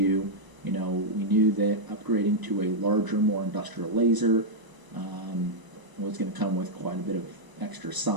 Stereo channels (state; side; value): late; left; 1.0 ms